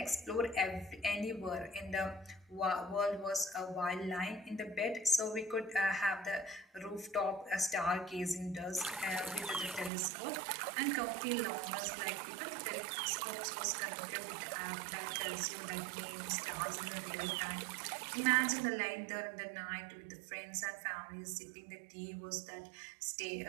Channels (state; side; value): drops out; left; at 9.9 s